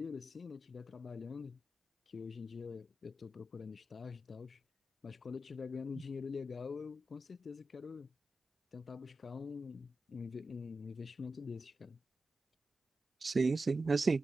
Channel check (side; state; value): both; normal; correlation 0.91